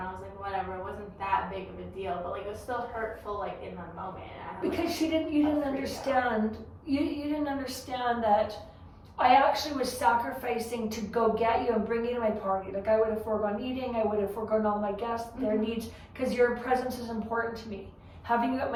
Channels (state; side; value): identical; both; correlation 1.00